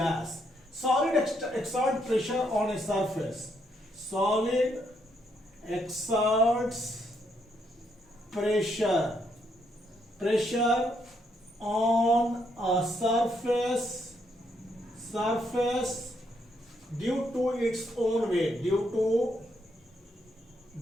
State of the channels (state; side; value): normal; both; correlation 0.75